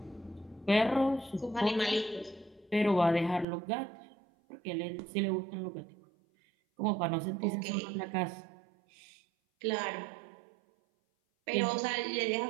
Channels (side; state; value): left; drops out; at 3.5 s